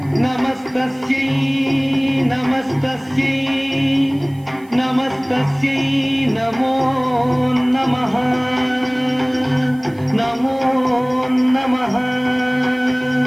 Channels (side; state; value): right; noise; hiss, 29 dB below the sound